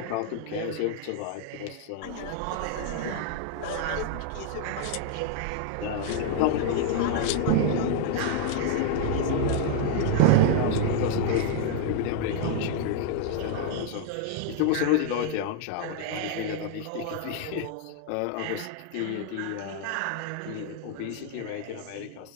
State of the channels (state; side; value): different; both; correlation 0.00